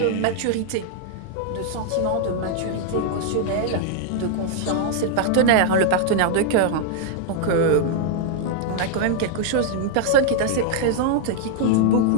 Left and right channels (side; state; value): both; different; correlation 0.00